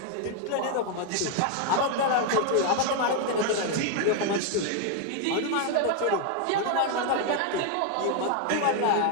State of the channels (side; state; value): both; different; correlation 0.01